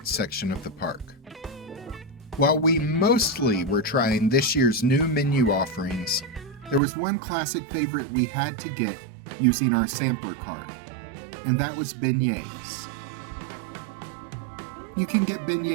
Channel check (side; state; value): left; drops out; at 6.8 s